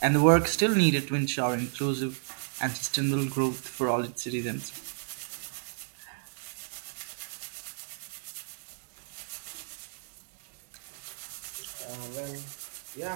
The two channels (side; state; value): left; silent; digital silence